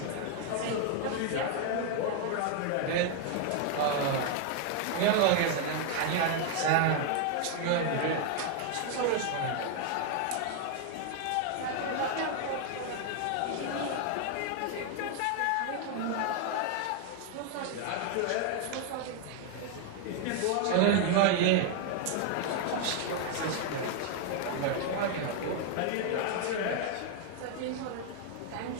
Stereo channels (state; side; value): different; both; correlation 0.00